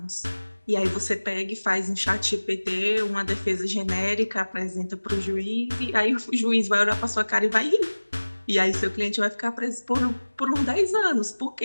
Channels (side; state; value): both; inverted; correlation -1.00